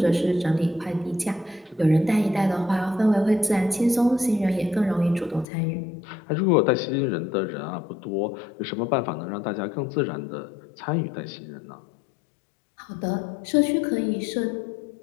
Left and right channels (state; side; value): drops out; right; at 5.5 s